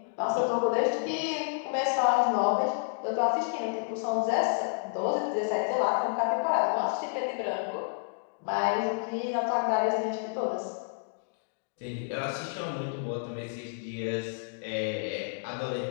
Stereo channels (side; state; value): right; silent; digital silence